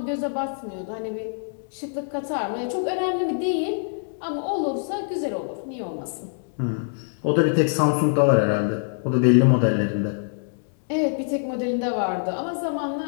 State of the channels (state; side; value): silent; right; digital silence